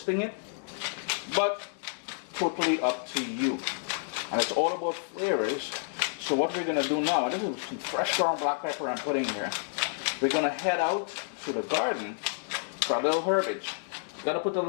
it. But totally up to you. And it's all about flavors. So what we're going to do now, this is some fresh ground black pepper I'm putting here. We're going to head out to the garden for a little herbage. Gotta put a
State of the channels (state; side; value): silent; right; digital silence